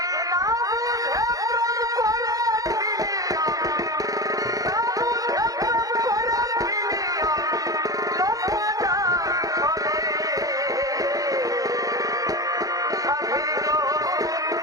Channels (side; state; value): left; late; 0.17 ms